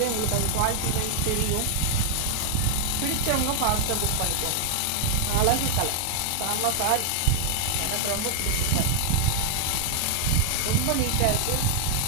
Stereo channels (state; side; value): different; both; correlation 0.00